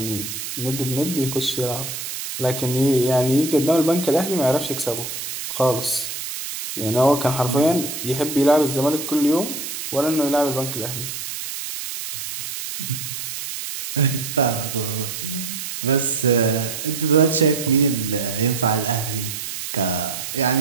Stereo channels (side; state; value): right; noise; hiss, 6 dB below the sound